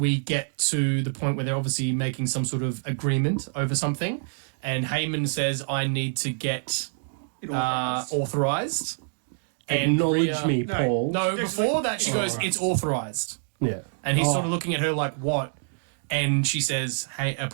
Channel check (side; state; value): left; silent; digital silence